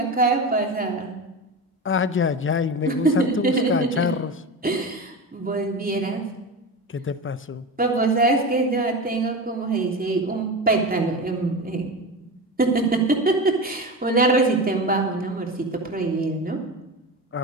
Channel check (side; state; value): both; normal; correlation 0.25